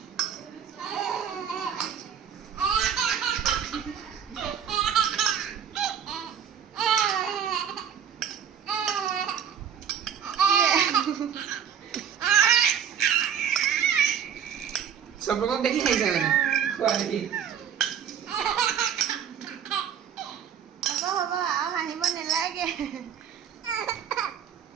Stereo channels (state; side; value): quieter; left; 8.3 dB